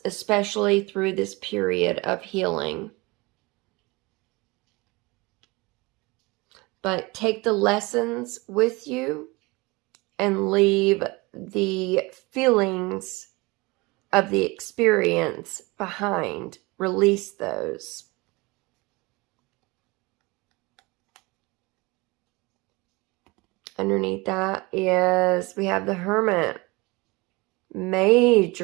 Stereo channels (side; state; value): left; quieter; 24.3 dB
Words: especially through this period of healing. But take the lessons with you and leave the feelings of the experience behind. Release those. Underneath that is, we have the Hermit.